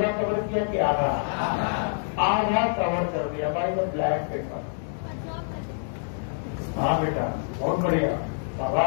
कवर किया कि आधा? आधा कवर कर दिया बाय द ब्लैक पेपर। हाँ बेटा, बहुत बढ़िया,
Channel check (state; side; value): silent; right; digital silence